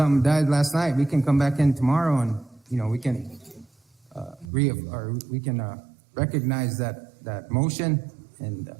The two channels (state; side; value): drops out; left; at 4.5 s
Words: died last night, we can come back in tomorrow and, we can recognize that motion and